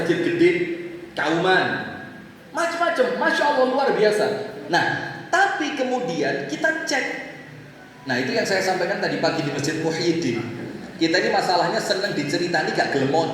gede Kauman. Macam-macam, Masya Allah luar biasa. Nah, tapi kemudian kita cek. Nah, itu yang saya sampaikan tadi pagi di Masjid Muhyiddin. Kita ini masalahnya senang diceritani gak gelem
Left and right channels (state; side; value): identical; both; correlation 1.00